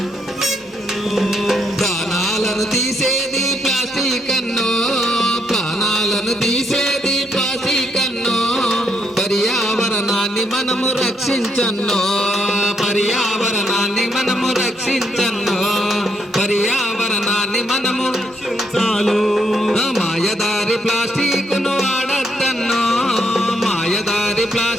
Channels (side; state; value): both; normal; correlation 0.75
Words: ప్రాణాలను తీసేది ప్లాస్టిక్ అన్నో ప్రాణాలను తీసేది ప్లాస్టిక్ అన్నో పర్యావరణాన్ని మనము రక్షించన్నో పర్యావరణాన్ని మనము రక్షించన్నో పర్యావరణాన్ని మనము రక్షించాలి మాయదారి